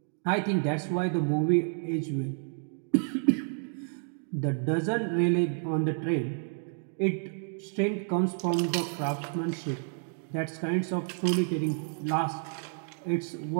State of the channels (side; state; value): left; silent; 58 dB below the other